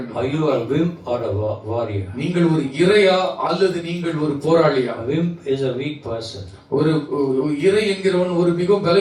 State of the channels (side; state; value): both; identical; correlation 1.00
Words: Are you a wimp or a warrior? நீங்கள் ஒரு இறையா அல்லது நீங்கள் ஒரு போராளியா? A wimp is a weak person. ஒரு இறை என்கிறவன் ஒரு மிகவும்